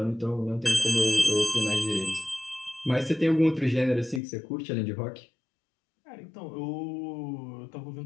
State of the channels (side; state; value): right; drops out; at 4.2 s